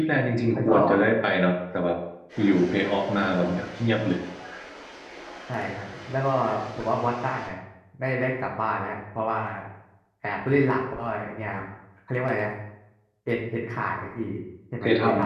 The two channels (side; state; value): both; identical; correlation 1.00